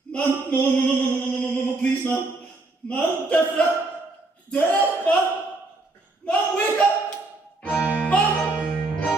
Man, no, please, man. Man, death, man. Man, wake up. Man.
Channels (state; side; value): quieter; left; 3.2 dB